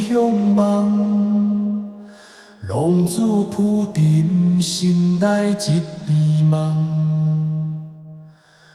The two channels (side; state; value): both; identical; correlation 1.00